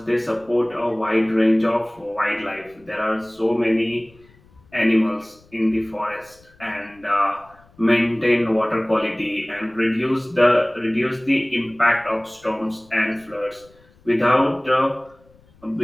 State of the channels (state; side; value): noise; left; rumble, 29 dB below the sound